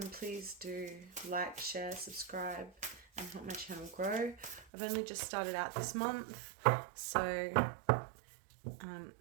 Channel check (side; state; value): left; drops out; at 4.7 s